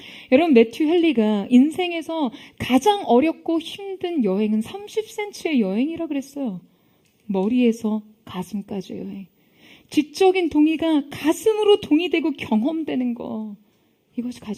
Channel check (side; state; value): both; identical; correlation 1.00